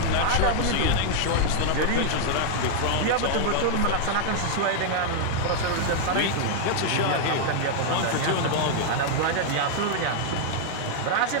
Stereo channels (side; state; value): both; different; correlation 0.00